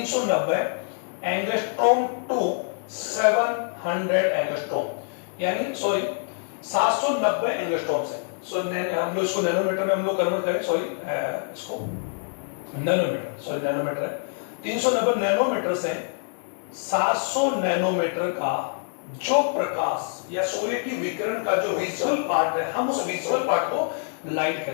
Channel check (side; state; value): right; silent; digital silence